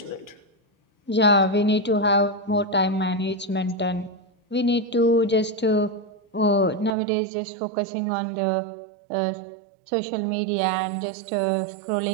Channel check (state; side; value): drops out; left; at 6.9 s